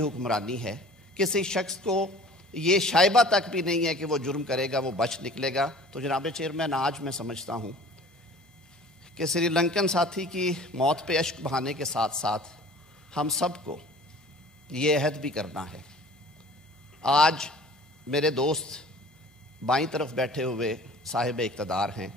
ہے. کسی شخص کو یہ شائبہ تک بھی نہیں ہے کہ وہ جرم کرے گا وہ بچ نکلے گا. تو جناب چیئرمین، آج میں سمجھتا ہوں کہ سری لنکن ساتھی کی موت پہ اشک بہانے کے ساتھ ساتھ ہم سب کو یہ عہد بھی کرنا ہے. آج میرے دوست بائیں طرف بیٹھے ہوئے صاحب اقتدار ہیں،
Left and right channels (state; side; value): normal; both; correlation 0.46